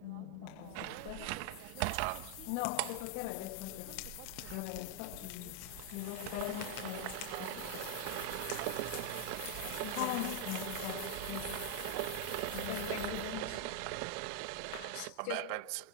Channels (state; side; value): different; both; correlation 0.00